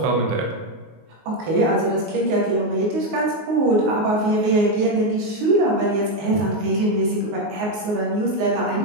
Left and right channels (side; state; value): left; late; 19 ms